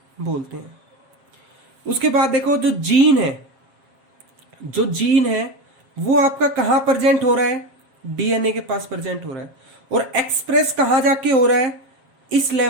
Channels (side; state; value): left; late; 7.4 ms